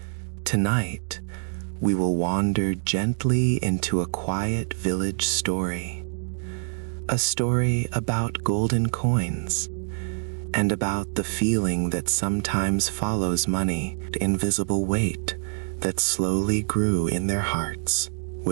Tonight, we will wander gently into a quiet village story. A story about golden coins, and about the feeling that sometimes follows money, the invisible weight that slowly grew in their hearts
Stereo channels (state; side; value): silent; left; digital silence